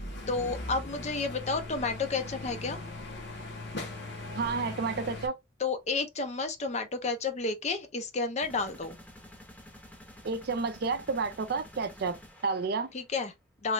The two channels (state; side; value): normal; both; correlation -0.06